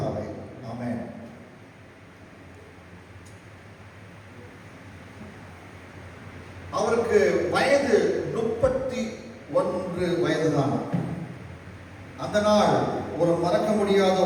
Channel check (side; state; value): both; identical; correlation 1.00